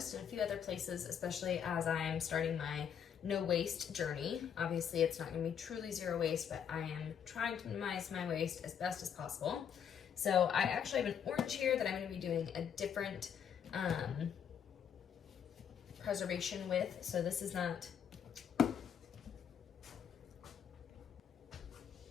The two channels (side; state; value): right; quieter; 8.1 dB